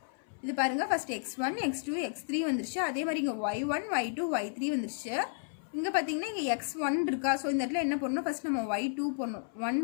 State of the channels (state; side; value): silent; right; 56 dB below the other